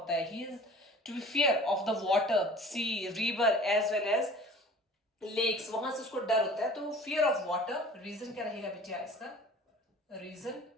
है. He is to be fear of the water, sea, river as well as lakes, वहां से उसको डर होता है. तो फियर ऑफ वाटर, रीजन क्या रहेगा बेटिया इसका, reason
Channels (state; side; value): normal; both; correlation 0.45